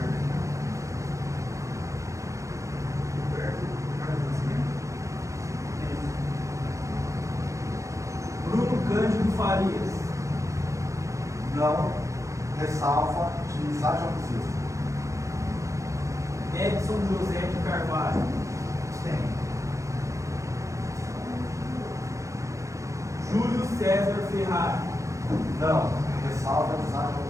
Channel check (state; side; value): late; left; 0.15 ms